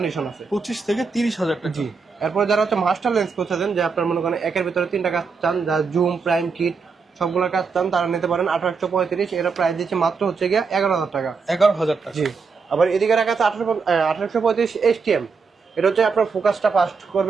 আছে। 25 থেকে 30,000 টাকা। জি। এরপর যারা হচ্ছে মাস্টার লেন্স করতেছেন, যে আপনার মনে করেন একের ভিতরে 3টা কাজ চান, যা জুম, প্রাইম, কিট সবগুলোর কাজ চান, তারা নিতে পারেন 1835। এটা প্রাইস দিচ্ছে মাত্র হচ্ছে গিয়ে 11,000 টাকা। 11,000 টাকা। জি। আবার এদিকে রাখা আছে 1835 STM, এটা হচ্ছে আপনার ফোকাসটা ফাস্ট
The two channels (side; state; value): left; quieter; 5.1 dB